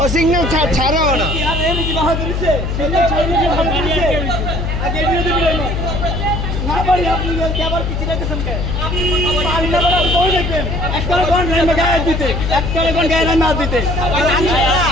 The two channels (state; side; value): noise; left; hum, 2 dB below the sound